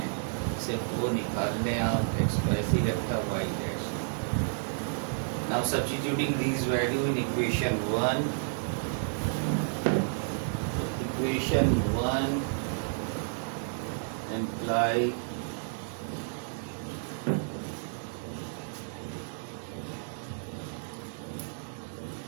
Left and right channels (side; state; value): left; silent; 57 dB below the other